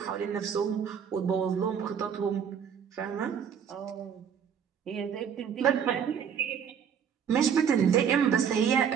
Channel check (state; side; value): quieter; left; 7.7 dB